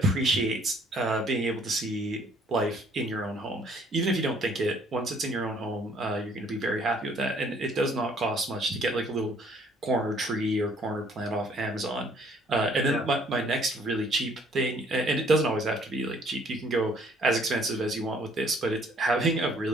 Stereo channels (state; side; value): normal; both; correlation 0.61